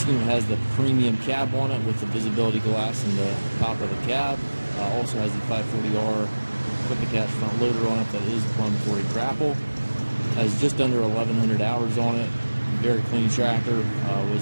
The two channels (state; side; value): inverted; both; correlation -1.00